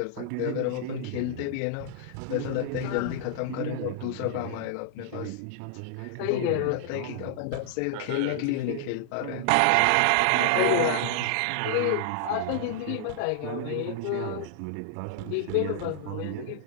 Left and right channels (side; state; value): both; different; correlation -0.01